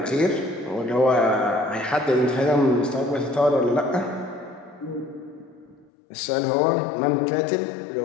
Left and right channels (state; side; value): drops out; right; at 5.9 s